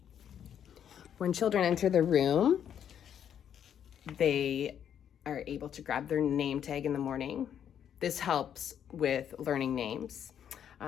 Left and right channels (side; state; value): right; quieter; 9.1 dB